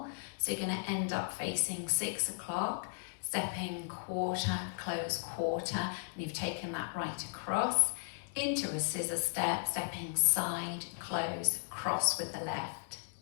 So you're going to end up facing 6 o'clock, stepping quarter, close quarter, and you've taken that right across. Into a scissor step, stepping side, close, cross with the left.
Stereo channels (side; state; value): right; silent; digital silence